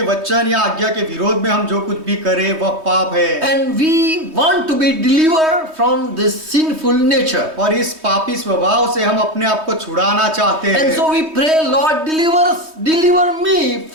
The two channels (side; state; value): left; late; 3.2 ms